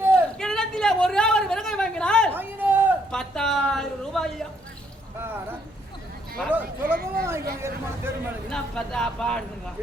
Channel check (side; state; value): both; normal; correlation 0.70